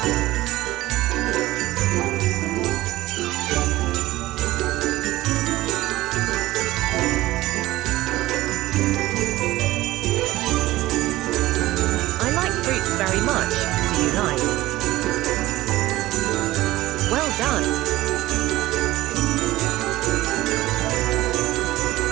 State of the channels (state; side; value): quieter; left; 17.0 dB